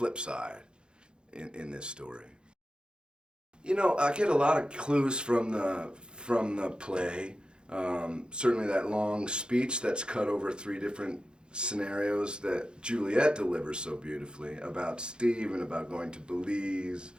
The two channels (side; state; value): left; late; 0.050 ms